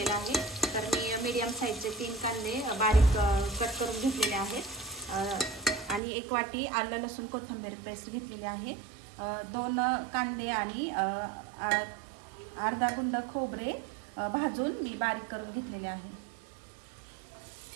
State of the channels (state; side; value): drops out; left; at 6.0 s